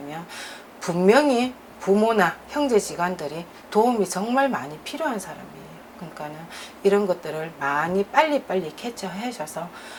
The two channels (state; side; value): identical; both; correlation 1.00